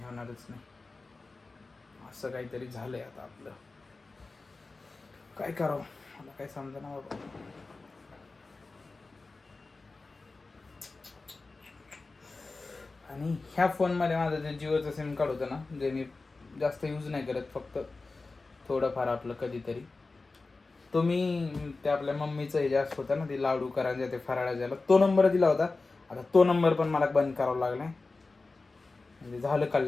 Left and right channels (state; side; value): quieter; right; 3.6 dB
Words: होणारच नाही. असं काहीतरी झालंय आता आपलं, काय करावं मला काय समजना बाबा. आणि ह्या फोनमध्ये माझं जे जिओचं सिम कार्ड होतं ना, जे मी जास्त यूज नाही करत, फक्त थोडंफार आपलं कधीतरी, तो मी ते आपल्या मम्मीचं हे जास्त होतं ना, ते लाडू करायचं, ते फराळा द्यायला, तो नंबर दिला होता. आता तो नंबर पण मला बंद करावा लागला, म्हणजे झालं